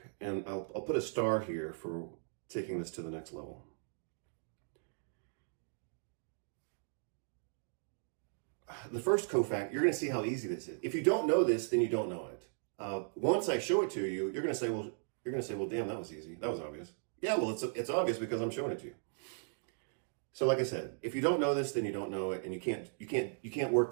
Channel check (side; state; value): left; silent; digital silence